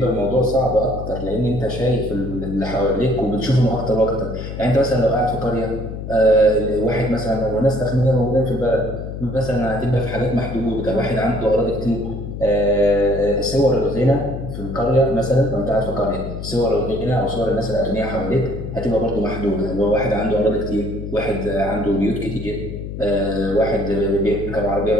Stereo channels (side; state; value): left; noise; hum, 8 dB below the sound